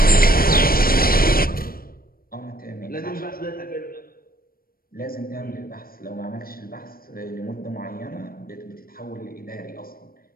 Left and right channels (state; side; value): late; right; 0.43 ms